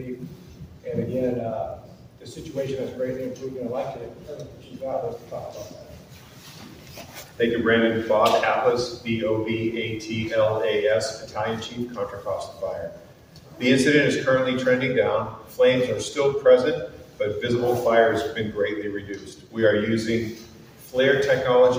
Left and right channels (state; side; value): identical; both; correlation 1.00